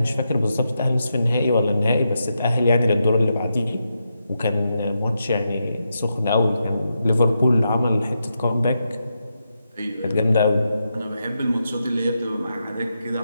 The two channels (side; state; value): both; inverted; correlation -0.85